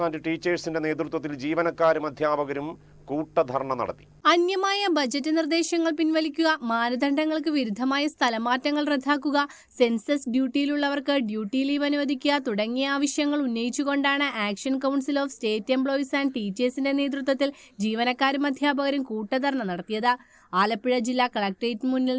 and ടീച്ചേഴ്സിന്റെ നേതൃത്വത്തിൽ ജീവനക്കാരും അധ്യാപകരും കൂട്ടധർണ നടത്തി. അന്യമായ ബജറ്റ് നിർദ്ദേശങ്ങൾ പിൻവലിക്കുക, മാനദണ്ഡങ്ങൾക്ക് വിരുദ്ധമായ സ്ഥലമാറ്റങ്ങൾ റദ്ദാക്കുക, സെൻസസ് ഡ്യൂട്ടിയിലുള്ളവർക്ക് ഡ്യൂട്ടി ലീവ് അനുവദിക്കുക തുടങ്ങിയ ആവശ്യങ്ങൾ ഉന്നയിച്ചുകൊണ്ടാണ് action council of state employees and ടീച്ചേഴ്സിന്റെ നേതൃത്വത്തിൽ ജീവനക്കാരും അധ്യാപകരും കൂട്ടധർണ നടത്തിയത്. ആലപ്പുഴ ജില്ലാ കളക്ടറേറ്റിന് മുന്നിൽ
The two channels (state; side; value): identical; both; correlation 1.00